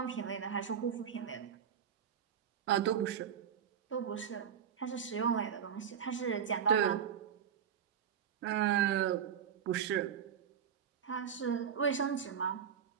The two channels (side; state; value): left; quieter; 8.2 dB